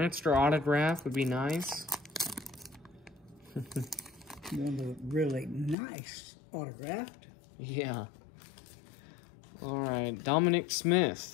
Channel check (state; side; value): drops out; right; at 5.8 s